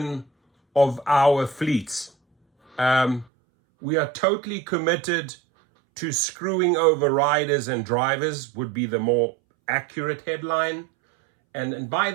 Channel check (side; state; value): left; drops out; at 3.2 s